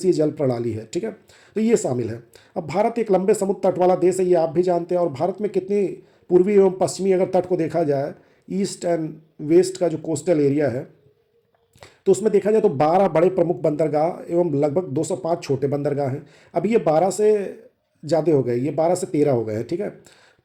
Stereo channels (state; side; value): identical; both; correlation 1.00